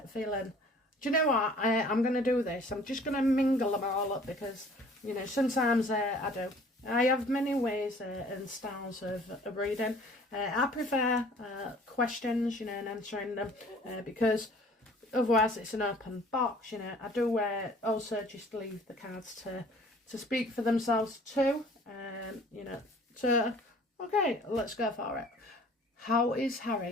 feeling? Do you know what? I'm going to do this. I'm just going to mingle them all up, because, sometimes I do. I have many ways and styles of reading. I prefer questions, and answering them, because otherwise it's an open box. I do also just leave the cards to speak for themselves too. So, okay, let's go for it. How is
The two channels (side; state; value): both; normal; correlation 0.52